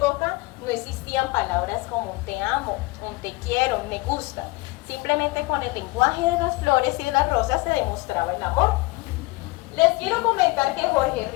no existían palabras como te amo, un te quiero, me gusta. Simplemente con el lenguaje de las flores y de las rosas se demostraba el amor. Les quiero comentar que Jorge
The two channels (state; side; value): quieter; right; 22.9 dB